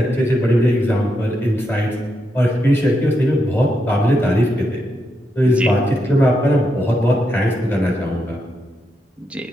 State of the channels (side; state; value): both; normal; correlation 0.83